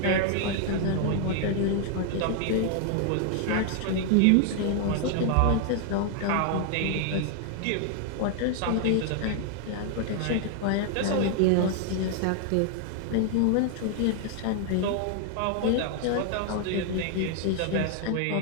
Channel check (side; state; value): both; different; correlation 0.00